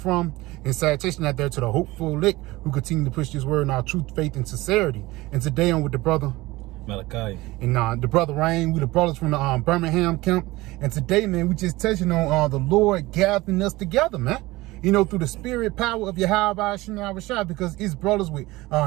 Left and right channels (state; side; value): quieter; left; 19.8 dB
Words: from. And salutation out there to the hopeful elect who continue to push this word in our truth, faith, and sincerity. And today I'm with the brother Malachi. And the brother Rain, we the brothers from the Birmingham camp. And today, man, we just touching on the Lord gathering us together, man. You know, through the spirit power of Yahweh Shai, because it's brothers with